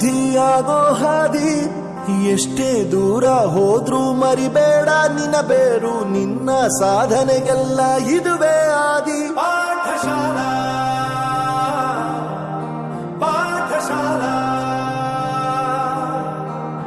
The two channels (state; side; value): identical; both; correlation 1.00